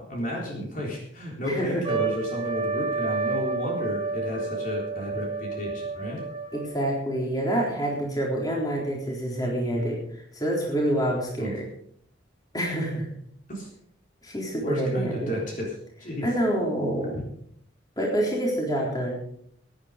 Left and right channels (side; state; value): both; normal; correlation 0.41